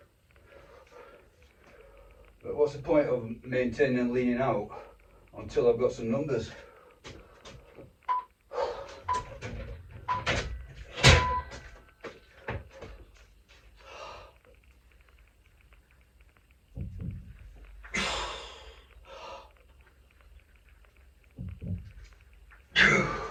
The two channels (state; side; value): identical; both; correlation 1.00